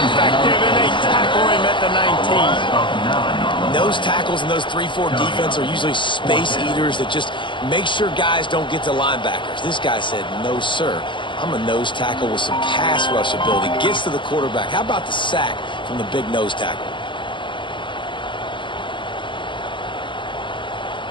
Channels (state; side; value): late; right; 0.23 ms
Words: and they tackle him at the 19. Those tackles and those 3-4 defense are usually space eaters that just make sure guys don't get to linebackers. This guy said, no, sir. I'm a nose tackle with some pass rush ability. Gets to the quarterback. How about the sack from the big nose tackle?